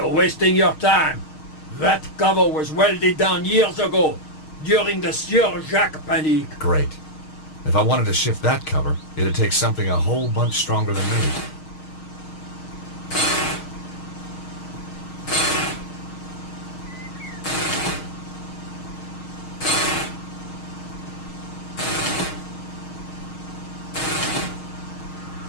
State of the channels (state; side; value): late; right; 6.4 ms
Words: wasting your time. That cover was welded down years ago, during the Sieur Jacques Panique. Great. If I wanted to shift that cover, it'd take something a whole bunch stronger than me.